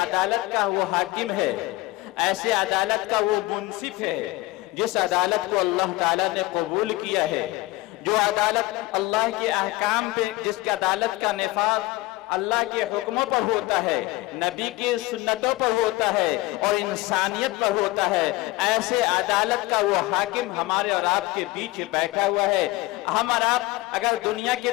का वो हाकिम है, ऐसे अदालत का वो मुंसिफ है जिस अदालत को अल्लाह ताला ने कबूल किया है, जो अदालत अल्लाह के अहकाम पे, जिसकी अदालत का निफाज़ अल्लाह के हुक्मों पर होता है, नबी की सुन्नतों पर होता है और इंसानियत पर होता है। ऐसे अदालत का वो हाकिम हमारे और आपके बीच बैठा हुआ है। हम और आप अगर दुनिया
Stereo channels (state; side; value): quieter; right; 20.0 dB